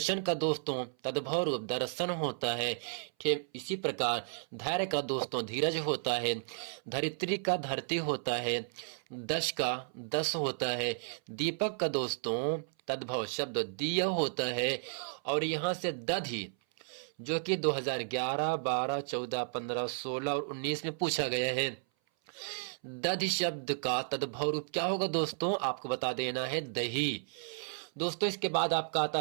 का दोस्तों तद्भव रूप दर्शन होता है। ठीक इसी प्रकार धैर्य का दोस्तों धीरज होता है। धरित्री का धरती होता है। दश का दस होता है। दीपक का दोस्तों तद्भव शब्द दिया होता है। और यहाँ से दधि, जो कि 2011, 12, 14, 15, 16 और 19 में पूछा गया है। दधि शब्द का तद्भव रूप क्या होगा दोस्तों? आपको बता देना है दही। दोस्तों, इसके बाद आपका आता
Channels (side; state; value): left; silent; 55 dB below the other